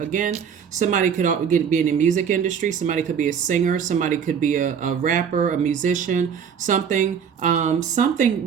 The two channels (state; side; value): quieter; left; 7.4 dB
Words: somebody could be in the music industry. Somebody could be a singer. Somebody could be a rapper, a musician, something. Something